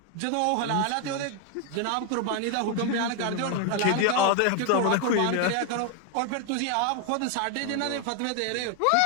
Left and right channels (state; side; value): different; both; correlation 0.01